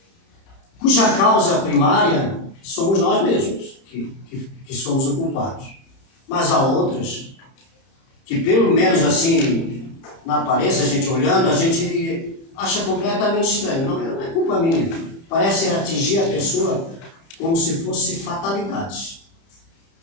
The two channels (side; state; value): right; late; 30 ms